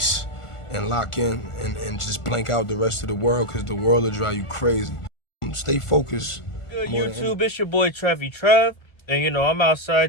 and lock in and just blank out the rest of the world, because the world will drive you crazy. Stay focused. Good More than YouTube, it's your boy Trevi Trev, and I'm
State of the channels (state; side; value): late; right; 1.4 ms